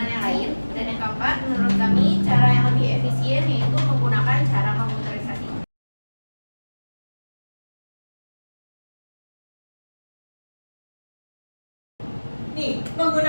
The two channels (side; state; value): both; inverted; correlation -1.00